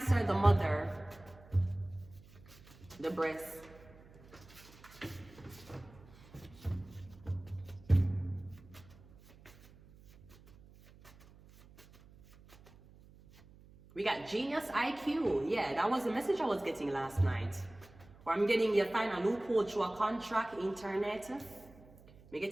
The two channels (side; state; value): right; noise; hum, 23 dB below the sound